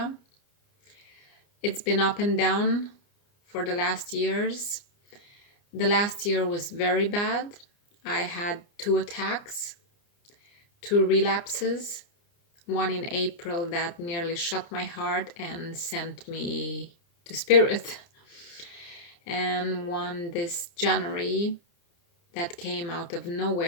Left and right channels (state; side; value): late; right; 29 ms